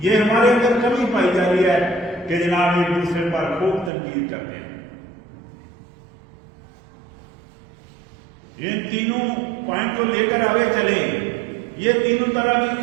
یہ ہمارے اندر کمی پائی جا رہی ہے کہ جناب ایک دوسرے پر خوب تنقید کرتے ہیں. ان تینوں پوائنٹ کو لے کر آگے چلیں. یہ 3 طرح کی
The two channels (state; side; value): drops out; left; at 3.9 s